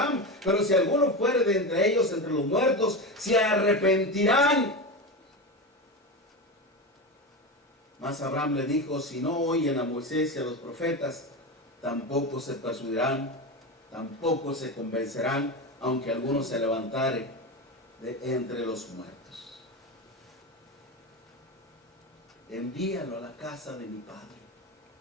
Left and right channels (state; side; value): normal; both; correlation 0.20